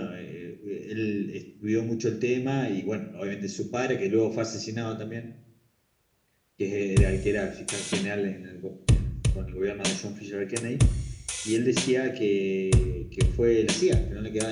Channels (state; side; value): identical; both; correlation 1.00